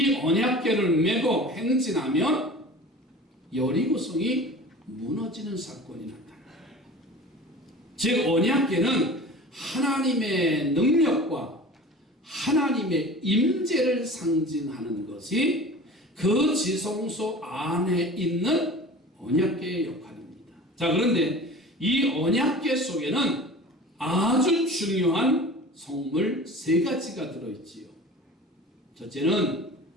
언약궤를 메고 행진하면 여리고성이 무너지는 사건이 나타나요. 즉 언약궤는 하나님의 능력과 하나님의 임재를 상징하는 것이 그 지성소 안에 있는 언약궤의 역할입니다. 자, 그런데 이 언약궤 속에는 아주 중요한 성물 세 가지가 들어있지요. 첫째는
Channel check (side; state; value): both; normal; correlation 0.39